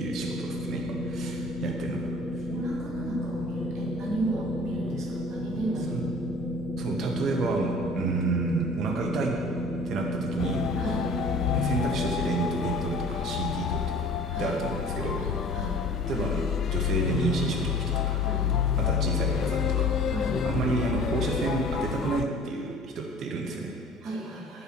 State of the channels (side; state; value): both; normal; correlation 0.47